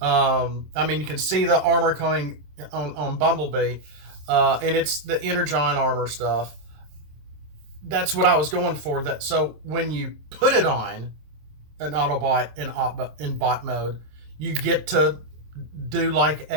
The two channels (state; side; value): late; left; 27 ms